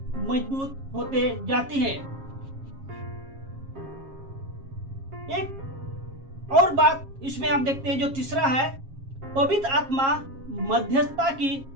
मजबूत होते जाते हैं। एक और बात इसमें हम देखते हैं जो तीसरा है, पवित्र आत्मा मध्यस्थता की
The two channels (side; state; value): left; late; 7.4 ms